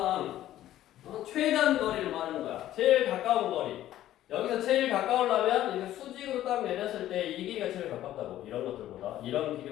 최단 거리를 말하는 거야. 제일 가까운 거리. 여기서 제일 가까우려면 이렇게 수직으로 딱 내렸을 때 이 길이가 제일 가깝다고. 이런 것들보다 이런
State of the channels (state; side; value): quieter; right; 13.2 dB